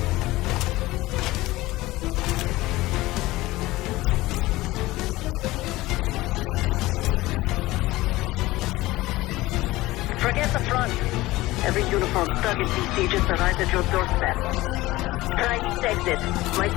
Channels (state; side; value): quieter; right; 18.7 dB